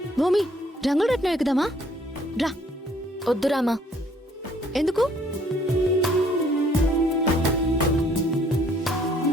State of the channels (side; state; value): both; normal; correlation 0.62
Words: భూమి, రంగుల రత్నం ఎక్కుదామా? రా. వద్దురామా. ఎందుకు?